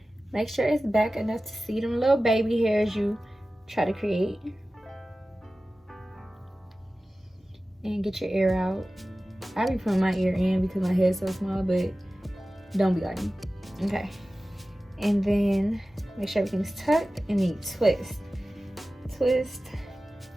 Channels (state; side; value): normal; both; correlation 0.96